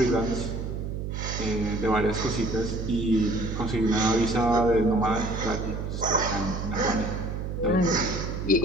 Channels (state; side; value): noise; right; hum, 5 dB below the sound